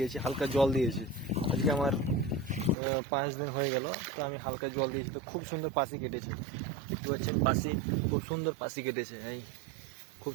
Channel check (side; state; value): left; drops out; at 2.8 s